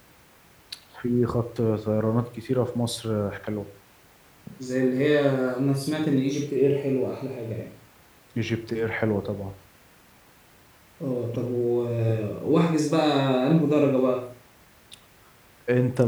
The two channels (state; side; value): identical; both; correlation 1.00